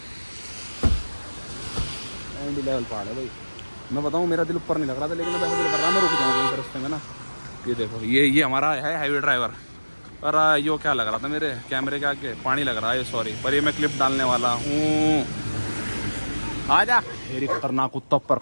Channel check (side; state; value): both; inverted; correlation -1.00